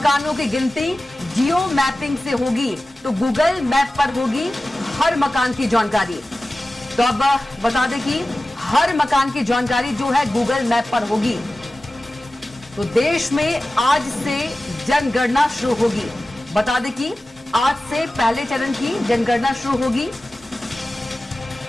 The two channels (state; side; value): normal; both; correlation 0.96